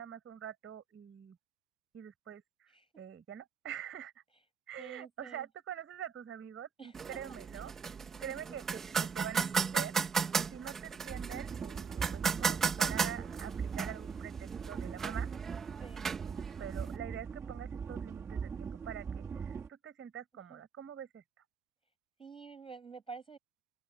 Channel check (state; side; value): quieter; left; 5.9 dB